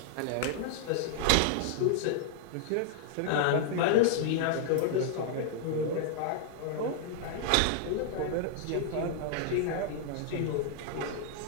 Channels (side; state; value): both; different; correlation 0.00